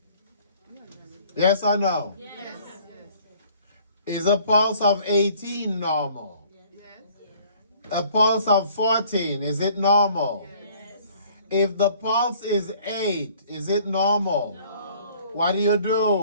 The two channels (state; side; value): inverted; both; correlation -0.56